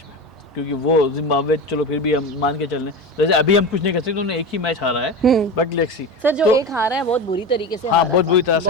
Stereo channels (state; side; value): normal; both; correlation 0.25